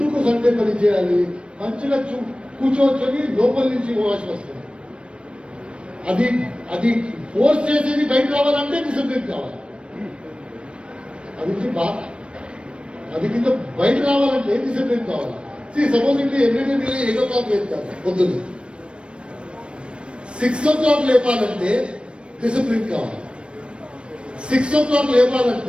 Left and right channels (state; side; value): late; left; 0.058 ms